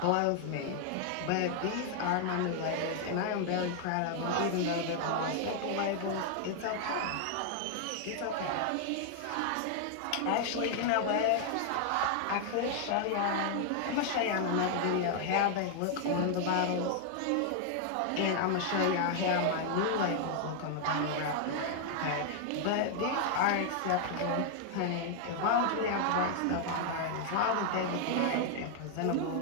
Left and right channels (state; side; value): different; both; correlation 0.00